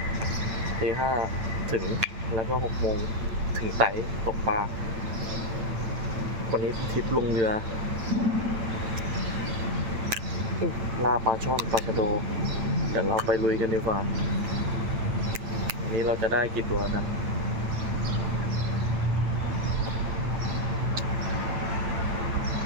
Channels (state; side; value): late; left; 8.9 ms